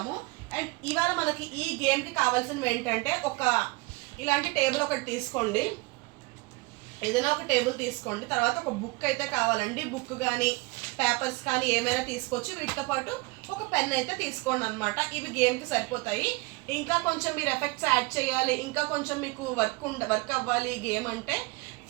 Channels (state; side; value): quieter; left; 25.1 dB